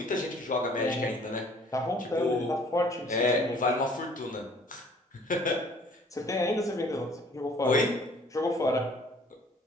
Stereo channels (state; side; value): normal; both; correlation 0.55